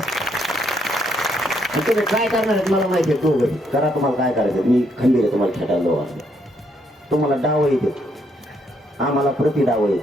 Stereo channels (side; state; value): both; normal; correlation 0.73